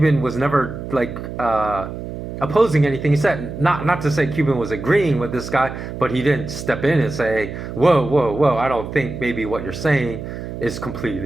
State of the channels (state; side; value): noise; right; hum, 8 dB below the sound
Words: was never opposing anything he said. Not to say Cuban was agreeing with this guy, but he didn't step in and say, whoa, I don't think maybe what you're saying is